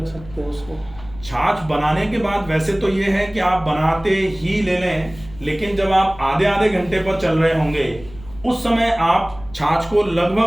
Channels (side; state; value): left; noise; rumble, 19 dB below the sound